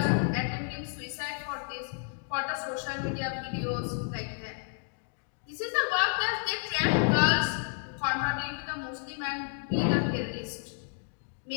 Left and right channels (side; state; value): right; silent; 57 dB below the other